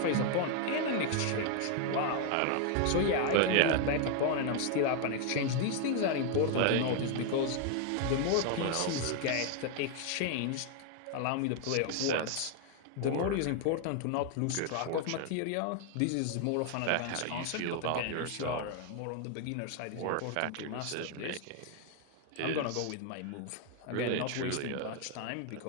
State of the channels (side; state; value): both; different; correlation 0.00